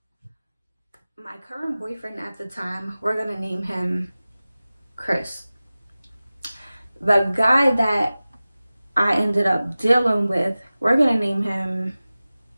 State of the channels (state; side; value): inverted; both; correlation -0.97